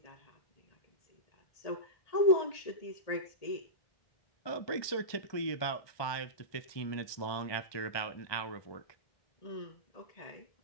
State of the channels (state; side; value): late; right; 1.2 ms